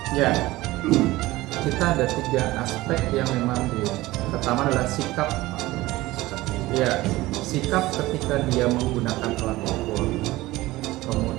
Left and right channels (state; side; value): quieter; left; 18.5 dB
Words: Ya, kita ada 3 aspek yang memang pertama adalah sikap. Ya, sikap ketika dia menggunakan alat ukur.